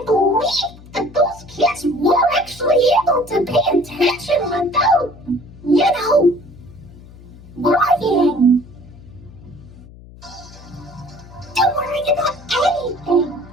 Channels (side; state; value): left; noise; hum, 20 dB below the sound